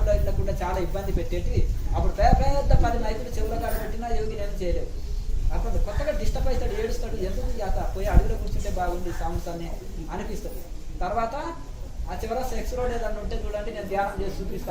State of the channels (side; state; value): both; identical; correlation 1.00